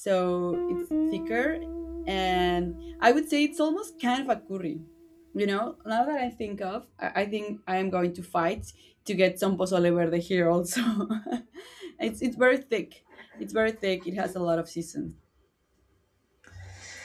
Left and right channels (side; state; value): both; identical; correlation 1.00